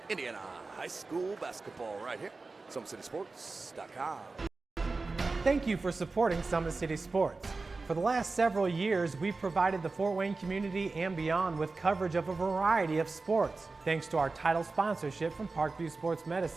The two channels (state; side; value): quieter; left; 3.8 dB